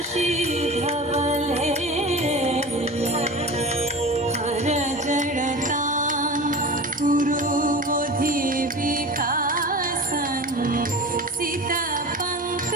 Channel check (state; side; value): normal; both; correlation 0.33